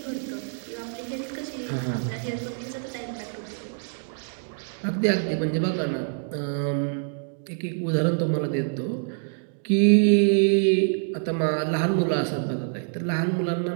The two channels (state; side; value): silent; left; digital silence